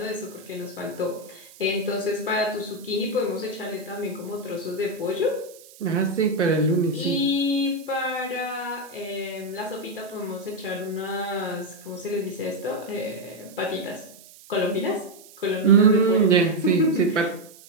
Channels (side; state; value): right; noise; hiss, 21 dB below the sound